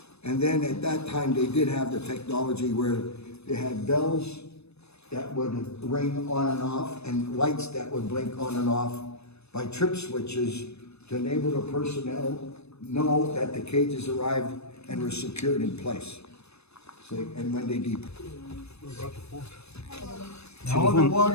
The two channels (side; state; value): right; late; 0.79 ms